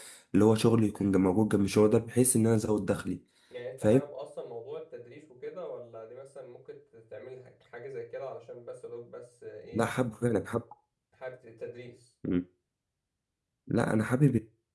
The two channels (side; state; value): both; identical; correlation 1.00